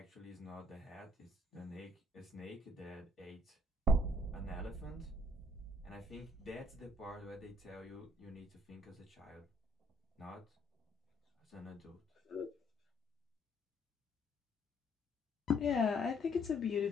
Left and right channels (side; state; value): both; normal; correlation 0.64